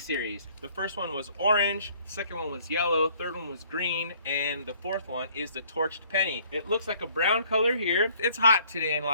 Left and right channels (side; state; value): both; inverted; correlation -0.60